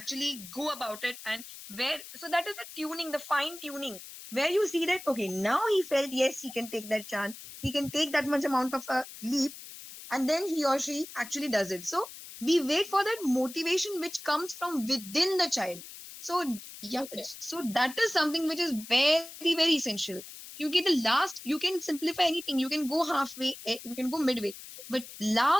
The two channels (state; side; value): noise; left; hiss, 14 dB below the sound